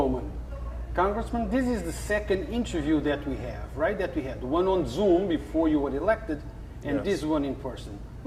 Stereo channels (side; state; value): both; identical; correlation 1.00